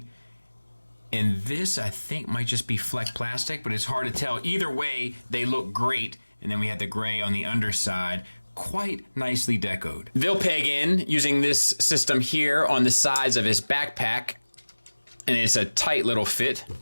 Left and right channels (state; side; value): inverted; both; correlation -1.00